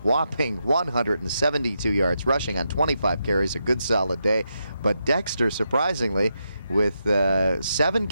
whopping 172 yards rushing on 25 carries, a good solid day. But Dexter, surprisingly, with 7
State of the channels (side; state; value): both; inverted; correlation -0.84